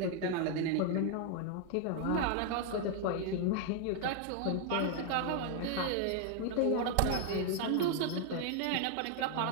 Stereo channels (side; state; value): both; different; correlation 0.01